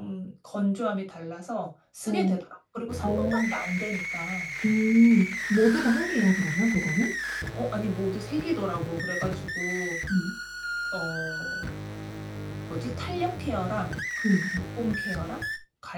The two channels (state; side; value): identical; both; correlation 1.00